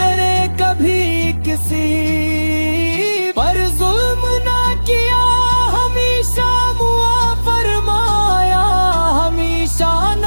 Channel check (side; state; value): both; inverted; correlation -1.00